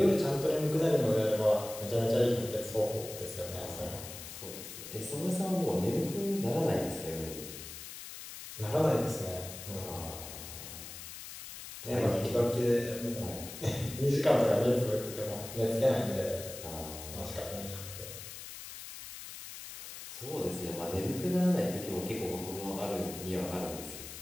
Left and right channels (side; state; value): left; noise; hiss, 11 dB below the sound